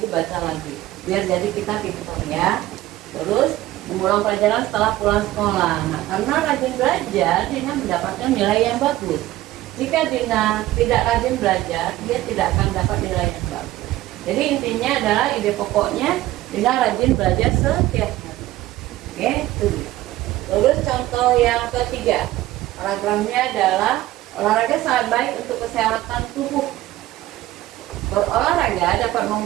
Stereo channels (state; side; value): quieter; left; 15.7 dB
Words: Biar jadi kita pintar ya. Terus mengulang pelajaran setelah pulang sekolah. Nah, karena rajin belajar, Dina mendapatkan nilai yang bagus. Jika Dina tidak rajin belajar, dia tidak akan dapat nilai yang bagus. Jadi intinya adalah ide pokoknya Dina rajin belajar setiap hari. Oke, itu dia. Terus contoh yang ketiga, paragrafnya adalah olahraga sangat baik untuk kesehatan tubuh. Berolahraga dapat